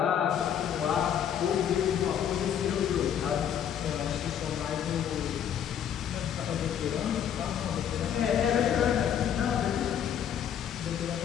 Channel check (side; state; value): right; quieter; 9.1 dB